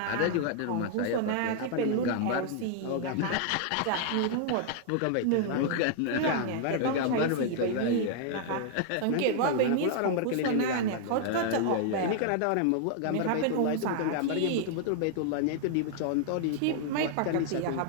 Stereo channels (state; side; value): different; both; correlation 0.00